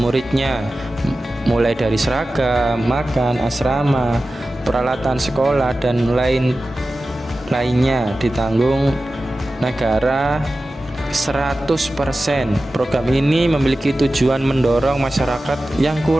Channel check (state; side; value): normal; both; correlation 0.94